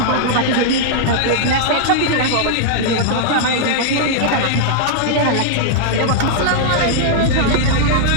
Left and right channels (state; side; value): different; both; correlation -0.01